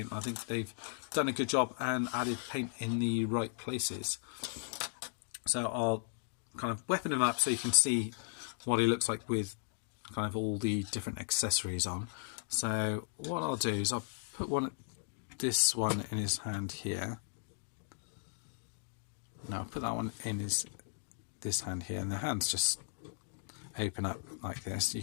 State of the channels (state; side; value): silent; right; digital silence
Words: I think they've done a good job and added paint in the right places. So I'll kind of weapon him up so you can see what he looks like with kind of all the different accessories on. So what I'll do is I'll put this one in his hand here. Now I'll put that one in this hand here, and the hands just open up like this.